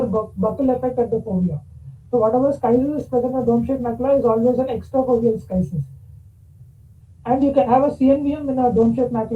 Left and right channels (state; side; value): identical; both; correlation 1.00